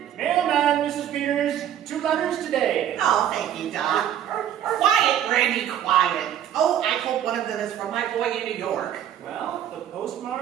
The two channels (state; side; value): quieter; left; 10.3 dB